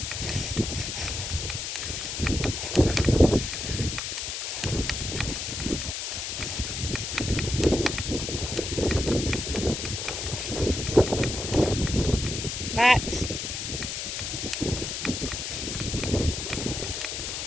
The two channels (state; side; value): noise; left; hiss, 4 dB below the sound